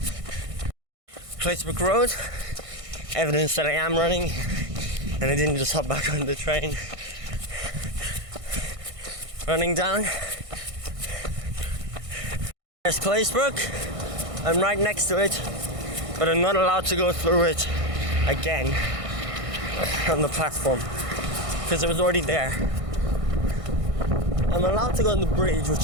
Claisebrook Road, evidence that I am running and I didn't just hop back on the train. Running down. There's Claisebrook. I'm right next to it, but I'm not allowed to go through it again on the platform because it was already there. I'm allowed to go on the bridge,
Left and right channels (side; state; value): left; late; 1.6 ms